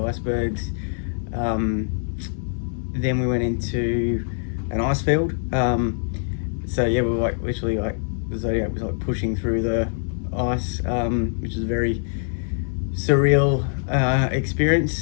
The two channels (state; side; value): silent; right; digital silence